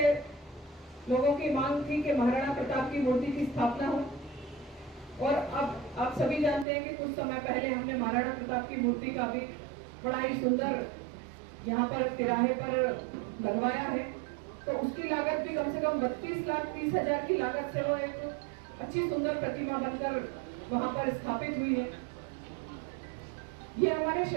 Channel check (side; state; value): left; drops out; at 6.7 s